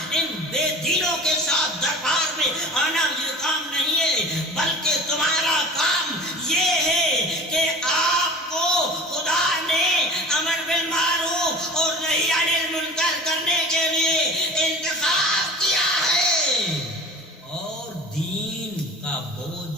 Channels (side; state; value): both; normal; correlation 0.39